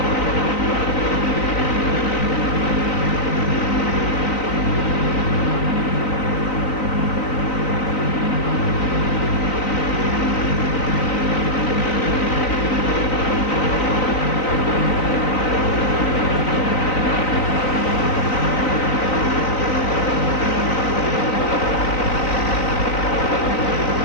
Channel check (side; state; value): right; late; 3.9 ms